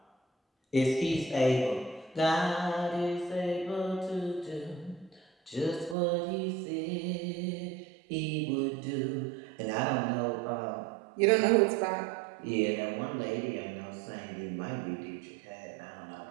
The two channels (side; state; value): left; drops out; at 6.0 s